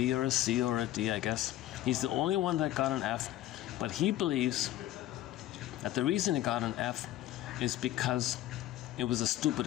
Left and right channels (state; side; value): quieter; right; 14.1 dB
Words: or a C or a D, I guess. He's the only one that got an F. But he believes that the reason he got an F is because it was a stupid